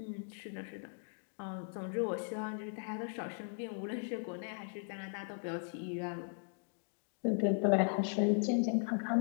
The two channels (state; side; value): silent; right; digital silence